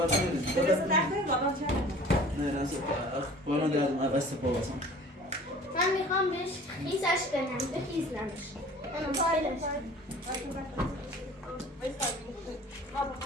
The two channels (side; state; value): both; normal; correlation 0.46